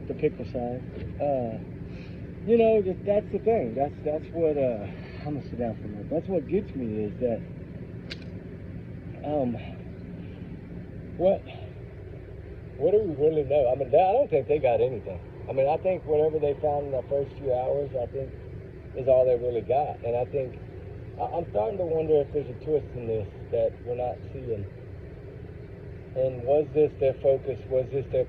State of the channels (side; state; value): both; identical; correlation 1.00